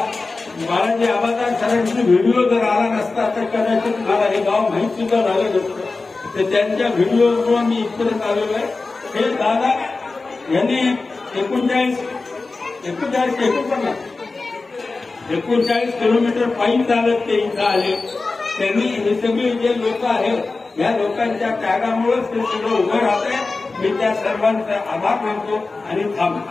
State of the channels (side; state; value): right; quieter; 3.7 dB